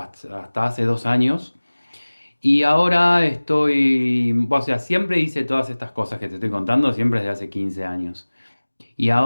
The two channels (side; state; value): both; inverted; correlation -1.00